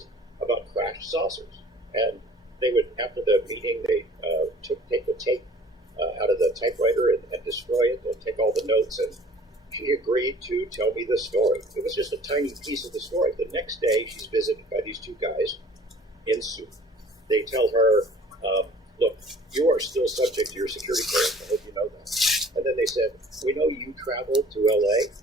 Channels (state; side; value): normal; both; correlation 0.51